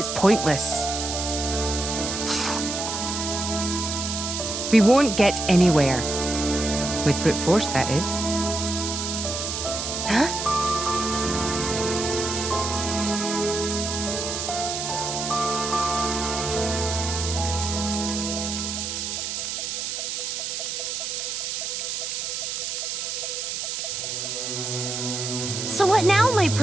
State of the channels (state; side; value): noise; right; hiss, 3 dB below the sound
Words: pointless. We won't get anywhere. With brute force, that is. Huh? So what now, my